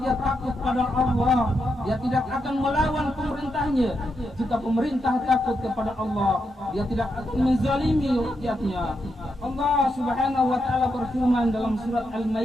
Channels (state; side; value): normal; both; correlation 0.83